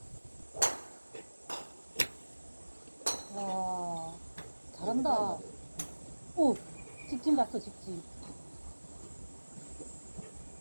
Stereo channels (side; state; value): both; inverted; correlation -1.00